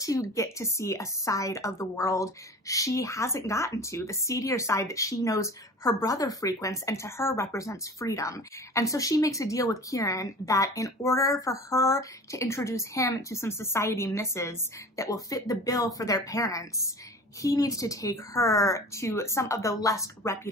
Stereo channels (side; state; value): both; normal; correlation 0.39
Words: get to see a side of the world she hasn't gotten to, the seedier side that she knows her brother frequents and to her represents freedom. And so she makes a deal with Kieran that in order for her to introduce him to some society misses that will fit the bill for their parents, he needs to take her to some of the less